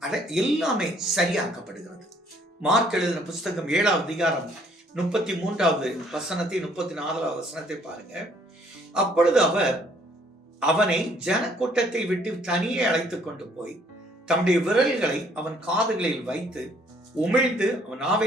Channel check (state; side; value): normal; both; correlation 0.63